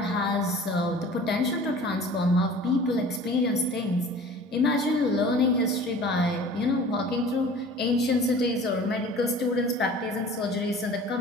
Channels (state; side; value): normal; both; correlation 0.44